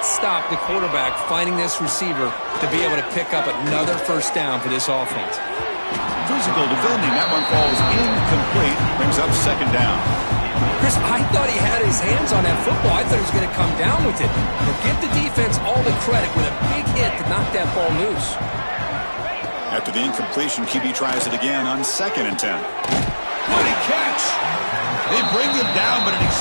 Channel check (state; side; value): inverted; both; correlation -1.00